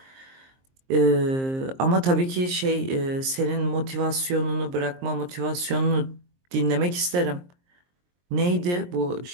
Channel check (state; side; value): late; left; 23 ms